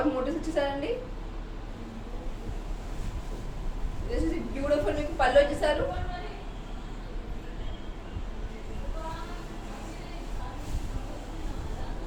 మోటివ్స్ ఇచ్చేసారండి. This is beautiful. మీకు పళ్ళు వచ్చేసారు.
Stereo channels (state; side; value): identical; both; correlation 1.00